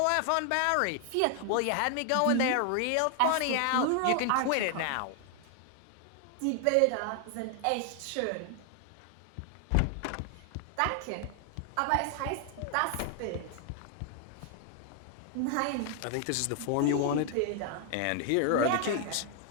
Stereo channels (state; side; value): different; both; correlation 0.00